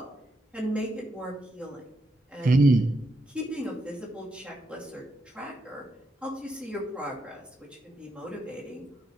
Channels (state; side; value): normal; both; correlation 0.81